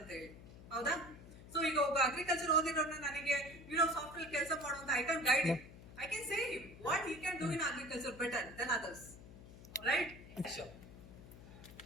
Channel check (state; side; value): noise; left; hum, 16 dB below the sound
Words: ಹೇಳಿ, ಹೌದಾ? ಸೊ ಈಗ ಒಬ್ಬ ಅಗ್ರಿಕಲ್ಚರ್ ಓದಿರೋನ್ನ ನನಗೆ ಸಾಫ್ಟ್ವೇರ್ ಕೆಲಸ ಮಾಡುವಂತ I can guide him, I can say him what he can do in agriculture better than others, right? Sure.